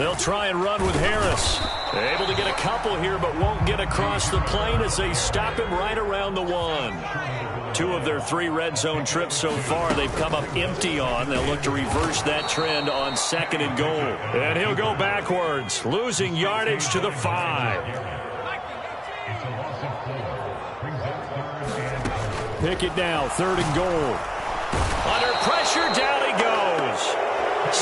try and run with Harris. Able to get a couple here, but won't get across the plane as they stop him right around the 1. 2 of their 3 red zone trips so far they've come up empty on. They'll look to reverse that trend on 2nd and goal. And he'll go backwards, losing yardage to the 5. Pickett now, 3rd and goal. Under pressure, down he goes.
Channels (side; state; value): both; identical; correlation 1.00